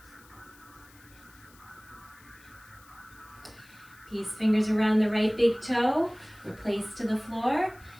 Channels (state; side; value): noise; left; hiss, 25 dB below the sound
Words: Peace fingers around the right big toe, replace to the floor.